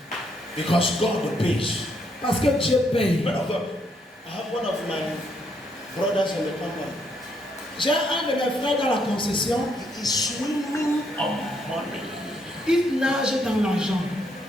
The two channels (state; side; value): normal; both; correlation 0.74